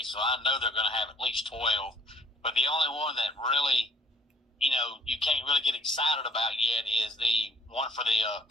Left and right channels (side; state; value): both; normal; correlation 0.59